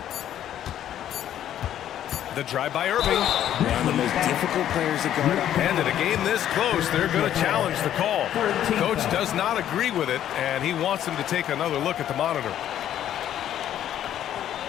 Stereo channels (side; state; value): right; quieter; 11.1 dB